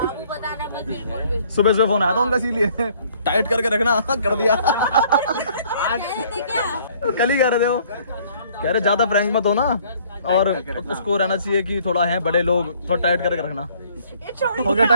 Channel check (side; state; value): both; inverted; correlation -0.60